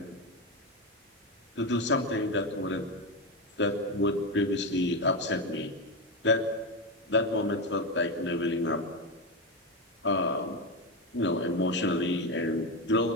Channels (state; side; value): normal; both; correlation 0.13